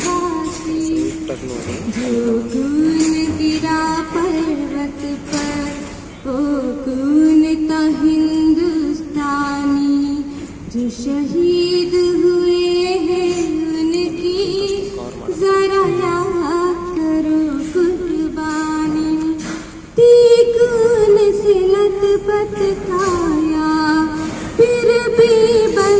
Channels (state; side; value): identical; both; correlation 1.00